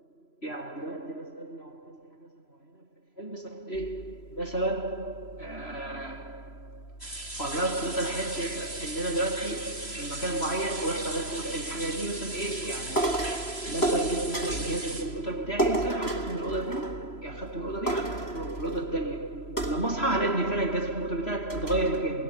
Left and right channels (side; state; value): right; late; 3.0 ms